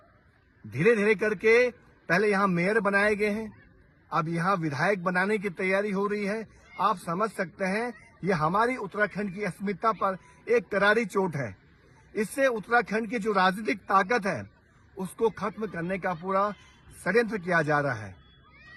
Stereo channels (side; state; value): both; identical; correlation 1.00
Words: धीरे धीरे करके पहले यहाँ मेयर बनाए गए हैं, अब यहाँ विधायक बनाने की तैयारी हो रही है। आप समझ सकते हैं ये हमारी उत्तराखंड की अस्मिता पर एक करारी चोट है। इससे उत्तराखंड की जो राजनीतिक ताकत है उसको खत्म करने का पूरा षड्यंत्र किया जा रहा है।